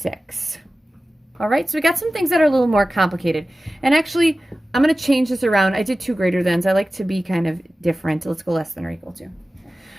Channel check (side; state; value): both; normal; correlation 0.95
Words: All right, so we got some things that are a little more complicated. And actually, I'm going to change this around. I did two greater thans. I like to be kind of different. Let's go less than or equal to.